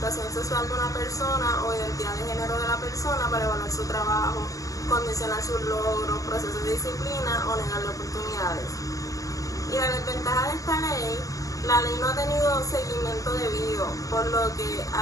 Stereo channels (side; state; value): right; late; 0.16 ms